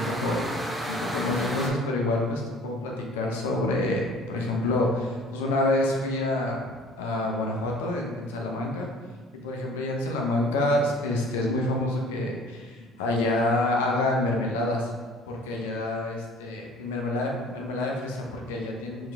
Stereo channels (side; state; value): both; normal; correlation 0.49